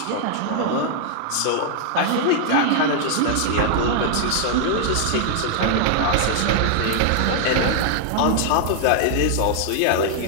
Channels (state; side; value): different; both; correlation 0.00